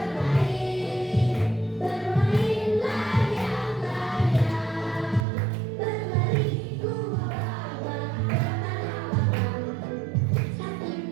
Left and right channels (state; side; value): drops out; left; at 5.2 s